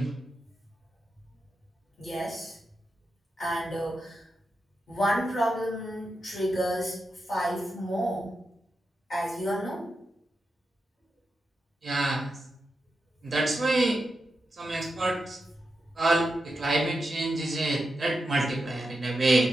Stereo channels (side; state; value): both; normal; correlation 0.88